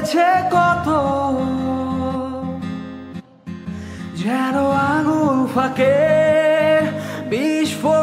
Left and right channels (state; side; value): identical; both; correlation 1.00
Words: কত, যেন আঙুল ফাঁকে বিষ